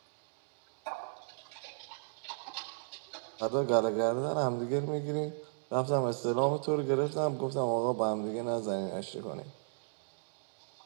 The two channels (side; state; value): left; silent; digital silence